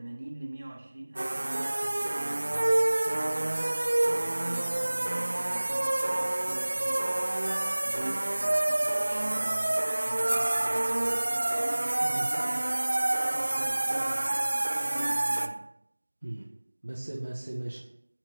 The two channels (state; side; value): inverted; both; correlation -1.00